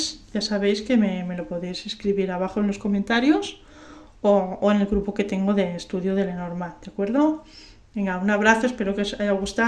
ya sabéis que me lo podéis escribir abajo en los comentarios o en el grupo que tengo de estudio de Lenormand, ¿de acuerdo? Venga, un abrazo, espero que os haya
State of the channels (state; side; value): identical; both; correlation 1.00